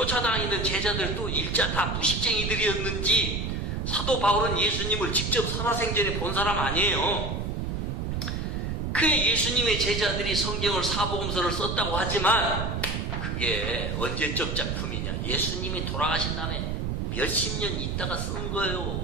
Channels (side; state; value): right; noise; rumble, 2 dB below the sound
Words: 제자들도 일자 다 무식쟁이들이었는지 사도 바울은 예수님을 직접 살아생전에 본 사람 아니에요. 그 예수님의 제자들이 성경을 사복음서를 썼다고 하지만 그게 언제적 작품이냐. 예수님이 돌아가신 다음에 몇십 년 있다가 쓴